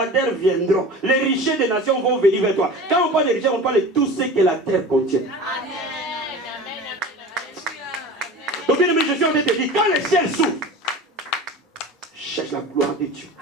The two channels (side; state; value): both; normal; correlation 0.36